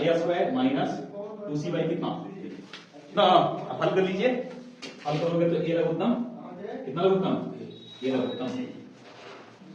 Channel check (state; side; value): identical; both; correlation 1.00